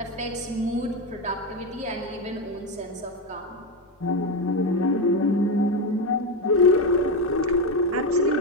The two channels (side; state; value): both; normal; correlation 0.11